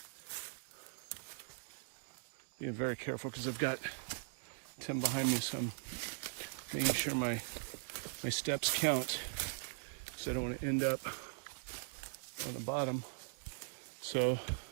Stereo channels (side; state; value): left; silent; digital silence